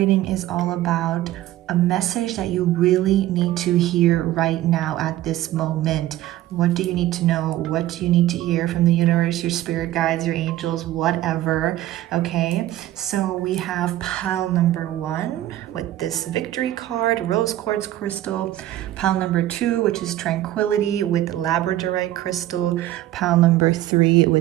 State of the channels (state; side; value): quieter; left; 14.3 dB